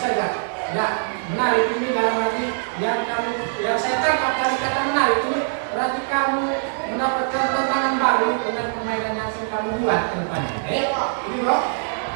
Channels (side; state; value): left; silent; 64 dB below the other